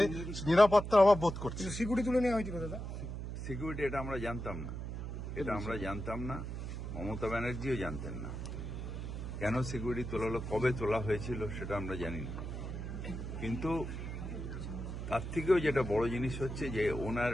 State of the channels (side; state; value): right; noise; hum, 6 dB below the sound